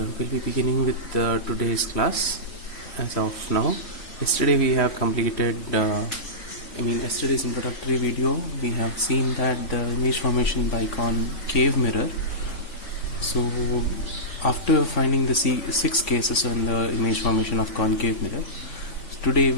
be beginning with today's class. As of now, yesterday we have completed yesterday's introductory video. We have seen that the image formation by concave mirror. So after finding the six cases in the image formation of concave mirror, today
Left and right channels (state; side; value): late; right; 3.5 ms